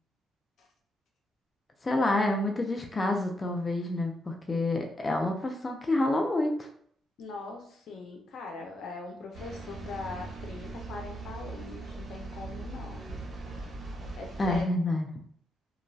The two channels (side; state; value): both; normal; correlation 0.82